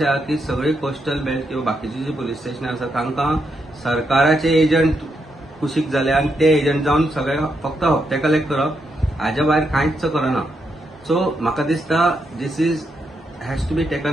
आहा की सगळी कोस्टल बेल्ट किंवा बाकीची जी पुलीस स्टेशनां आसा तांकां सरकाराचे एजंट कुशीक जाले आनी ते एजंट जावन सगळे फक्त हप्ते कलेक्ट करप हाच्या भायर कांयच करना. सो म्हाका दिसता this is has to be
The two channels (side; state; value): both; normal; correlation 0.81